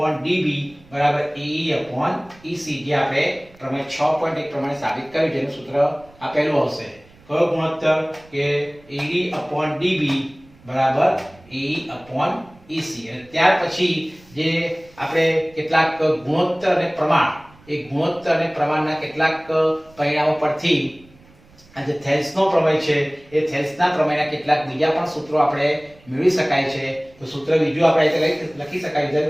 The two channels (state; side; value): noise; right; rumble, 27 dB below the sound